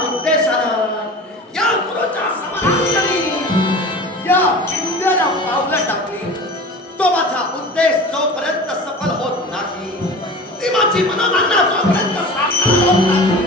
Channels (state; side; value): normal; both; correlation 0.36